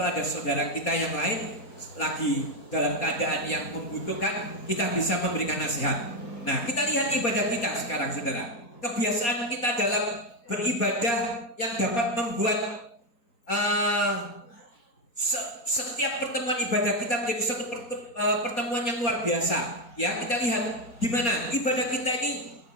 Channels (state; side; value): late; right; 4.2 ms